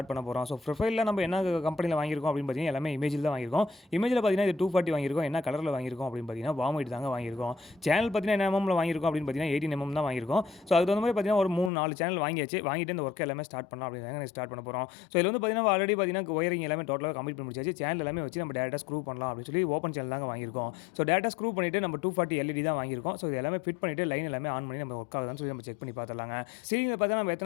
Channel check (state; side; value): drops out; right; at 11.7 s